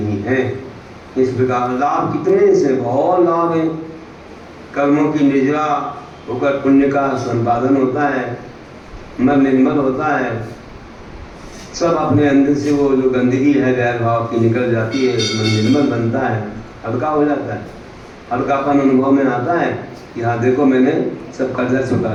है। इस प्रकार लाभ कितने से बहुत लाभ है। कर्मों की निजरा होकर पुण्य का संपादन होता है, मन निर्मल होता है, सब अपने अंदर से वो जो गंदगी है बैर भाव की निकल जाती है, मन निर्मल बनता है, हल्का हो जाता है, हल्कापन अनुभव में आता है कि हाँ देखो मैंने सब कर्जा चुका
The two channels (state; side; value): identical; both; correlation 1.00